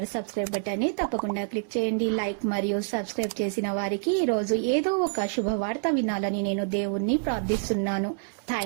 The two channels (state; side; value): silent; left; digital silence